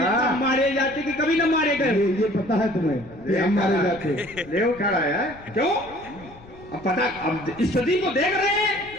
मारे जाते कि कभी न मारे गए। ये पता है तुम्हें, हम मारे जाते। ले उठा रहा है क्यों? अब पता, अब स्थिति को देख रहे हैं,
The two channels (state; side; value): noise; left; rumble, 21 dB below the sound